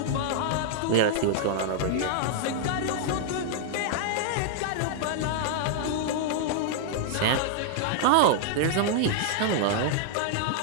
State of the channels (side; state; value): both; different; correlation -0.01